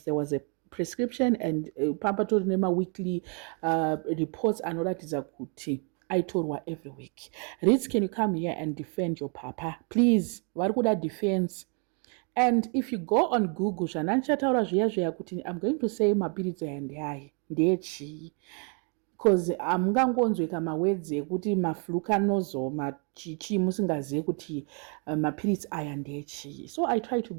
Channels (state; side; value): quieter; left; 38.6 dB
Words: there was a prescription and pampatori nema weekly reports anoratiza kuti aitorwa every week? Ritz, can you come here and defend your papa? Please, varikuda defense. And if you go on Google, I'm going to say mapiritsi ayandiyai ndechi, because amungangonzweka mawords ekuti maflucanozo machichi musingazive kuti mapiritsi aya ndechi. So I try to